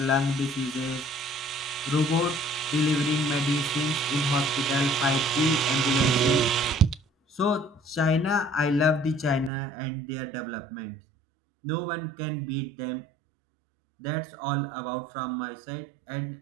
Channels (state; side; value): drops out; left; at 9.5 s